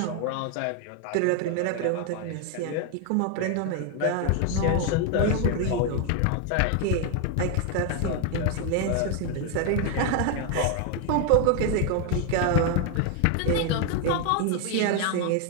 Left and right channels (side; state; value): both; different; correlation 0.01